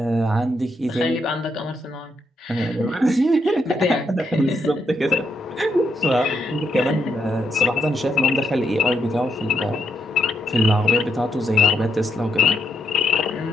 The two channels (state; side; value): normal; both; correlation 0.78